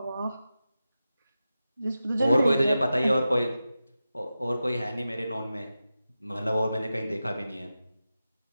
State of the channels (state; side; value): inverted; both; correlation -0.92